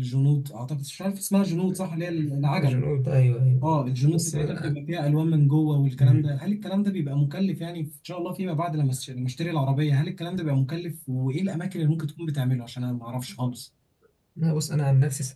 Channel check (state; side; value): identical; both; correlation 1.00